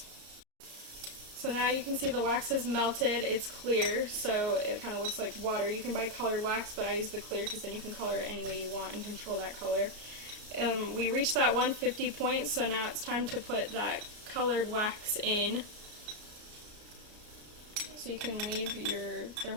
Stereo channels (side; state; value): left; late; 33 ms